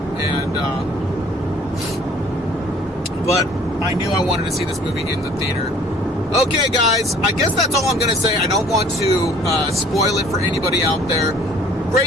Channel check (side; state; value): both; normal; correlation 0.54